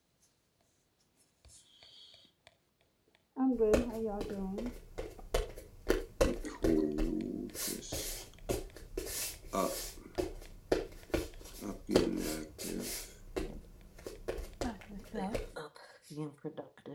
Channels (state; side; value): identical; both; correlation 1.00